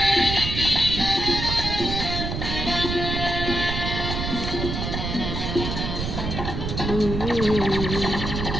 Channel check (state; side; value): noise; right; rumble, 3 dB below the sound